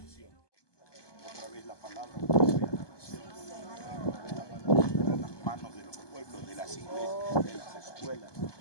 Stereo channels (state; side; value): late; right; 1.2 ms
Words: Otra vez la palabra vuelve a la nación. Otra vez la palabra en las manos de los pueblos, de las iglesias, de las escuelas,